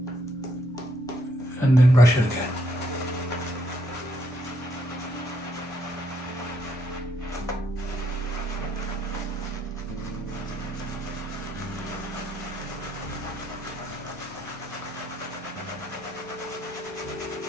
And then brush it again.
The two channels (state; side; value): normal; both; correlation 0.73